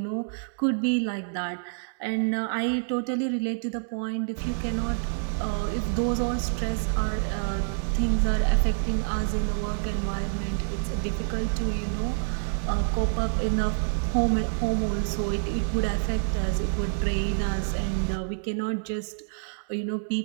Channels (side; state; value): left; silent; digital silence